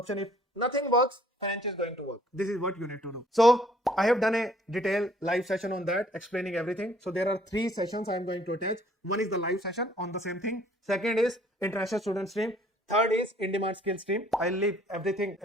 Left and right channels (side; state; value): both; normal; correlation 0.60